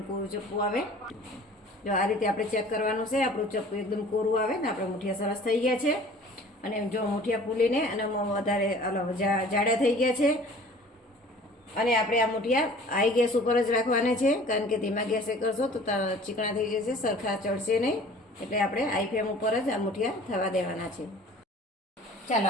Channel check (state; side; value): normal; both; correlation 0.47